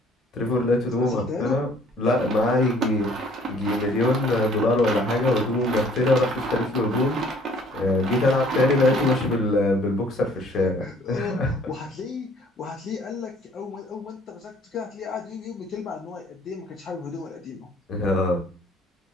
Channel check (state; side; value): normal; both; correlation 0.58